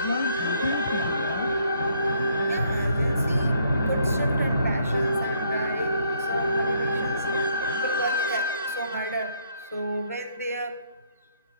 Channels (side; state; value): both; inverted; correlation -0.68